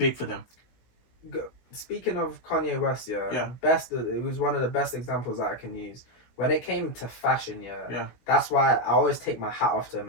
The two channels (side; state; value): right; late; 16 ms